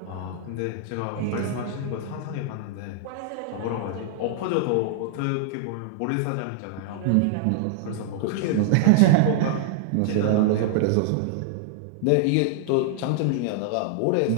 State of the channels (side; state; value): both; different; correlation 0.00